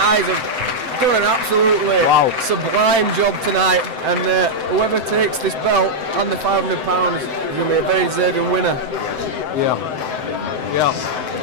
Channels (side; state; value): left; late; 7.8 ms